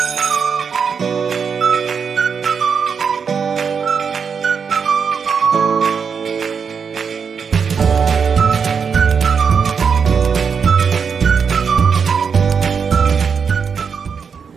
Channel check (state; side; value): quieter; left; 6.2 dB